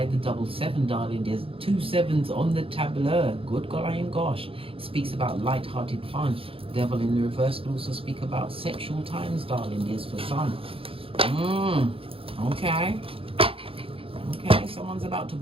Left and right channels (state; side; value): late; left; 0.27 ms